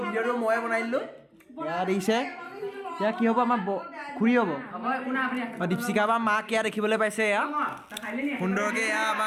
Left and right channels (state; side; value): identical; both; correlation 1.00